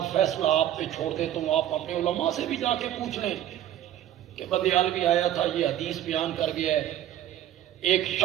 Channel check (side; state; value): left; quieter; 11.9 dB